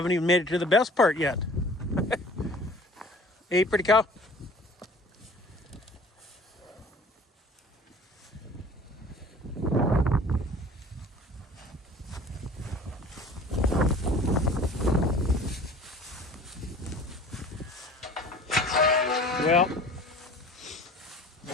even made it to the best part yet. Hey, pretty cow. Well,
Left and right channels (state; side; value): normal; both; correlation 0.46